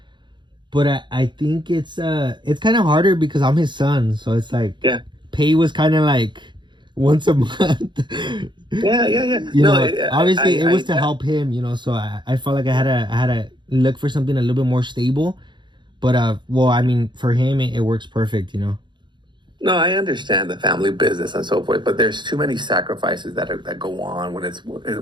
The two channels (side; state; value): left; late; 0.22 ms